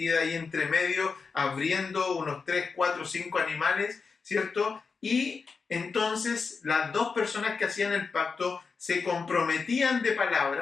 ahí entre medio, abriendo unos 3, 4, 5 animales, ¿cierto? Y entonces las dos personas que hacían el pacto se comprometían de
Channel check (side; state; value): right; quieter; 5.0 dB